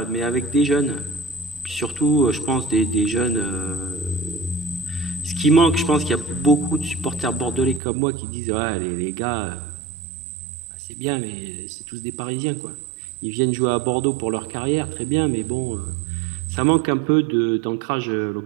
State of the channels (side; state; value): left; drops out; at 7.8 s